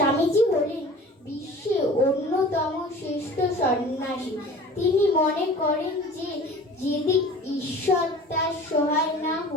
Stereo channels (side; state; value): both; normal; correlation 0.42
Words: হলেন বিশ্বের অন্যতম শ্রেষ্ঠ সন্ন্যাসী। তিনি মনে করেন যে যদি ঈশ্বর তার সহায় না